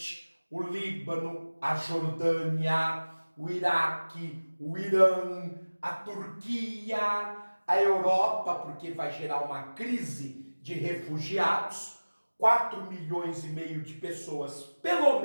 o Líbano, a Jordânia, o Iraque, o Irã, a Turquia, a Europa, porque vai gerar uma crise de refugiados. 4,5 milhões de pessoas, pelo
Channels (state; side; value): inverted; both; correlation -1.00